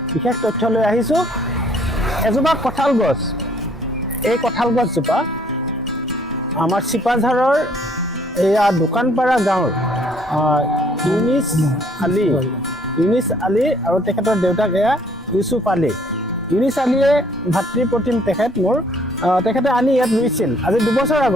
বিশেষ তথ্য লৈ আহিছোঁ। এজোপা কঁঠাল গছ, এই কঁঠাল গছজোপা আমাৰ চিপাঝাৰৰ এয়া দোকানপাৰা গাঁৱৰ ইউনিছ আলী আৰু তেখেতৰ দেউতাক এয়া ইউচুফ আলী। ইউনিছ আলীয়ে ভাতৃপ্ৰতিম তেখেত মোৰ, তেখেতে আনি ইয়াত ৰুইছিল আজি 2 বছৰ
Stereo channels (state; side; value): normal; both; correlation 0.62